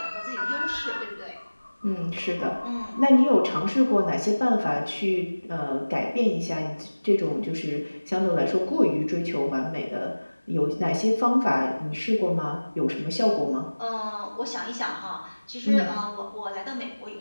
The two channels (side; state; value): both; inverted; correlation -1.00